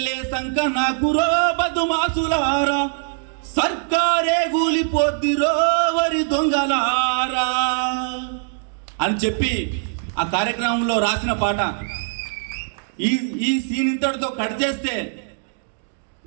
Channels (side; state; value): left; silent; digital silence